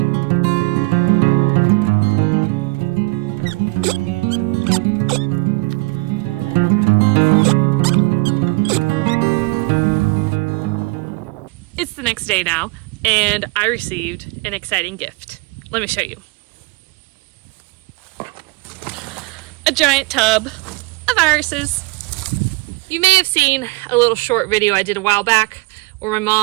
It's the next day now, and I received an exciting gift. Let me show you. A giant tub of irises. You may have seen a little short video I did a while back where my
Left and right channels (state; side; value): quieter; left; 26.4 dB